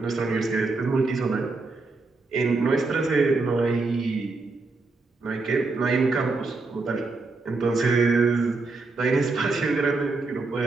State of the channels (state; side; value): quieter; left; 3.7 dB